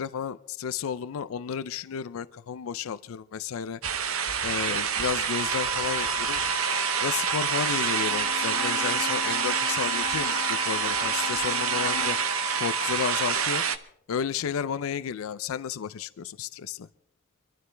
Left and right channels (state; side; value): normal; both; correlation -0.04